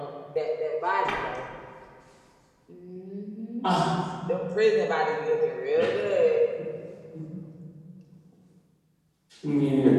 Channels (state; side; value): identical; both; correlation 1.00